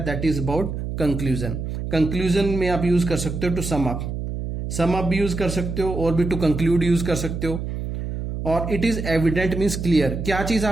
that is about conclusion. Conclusion में आप यूज कर सकते हो टू सम अप भी यूज कर सकते हो, और भी टू कंक्लूड यूज कर सकते हो। और it is evident means clear, क्या चीज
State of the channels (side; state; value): right; noise; hum, 5 dB below the sound